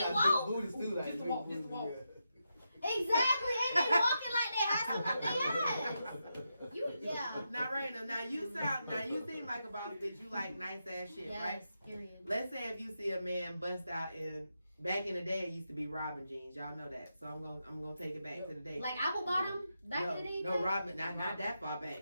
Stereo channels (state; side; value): inverted; both; correlation -0.86